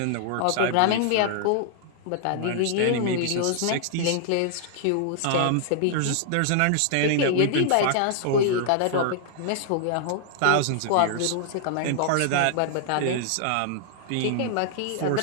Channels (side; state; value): both; different; correlation -0.01